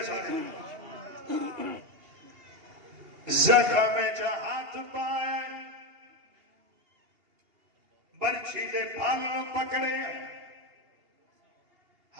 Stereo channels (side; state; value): left; late; 2.8 ms